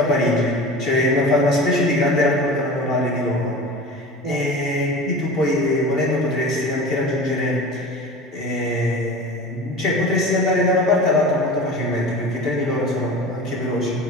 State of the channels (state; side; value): normal; both; correlation 0.35